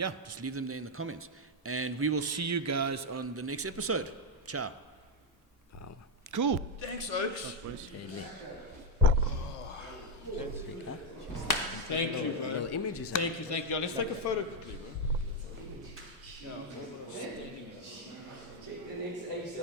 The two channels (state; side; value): normal; both; correlation 0.03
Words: leave them there in the comments. And we will see you guys on the next episode. Ciao. Cool. Thanks, Oaks. Thank you, bro. Little images. Thank you. Let's take a photo quickly, bro. Check the next Ace